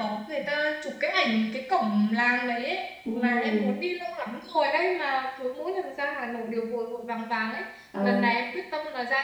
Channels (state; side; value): identical; both; correlation 1.00